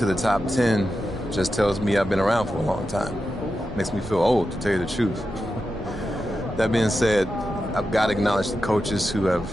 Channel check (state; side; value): normal; both; correlation 0.90